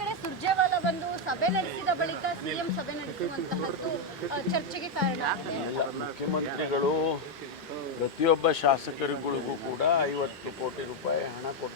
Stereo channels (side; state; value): both; normal; correlation 0.02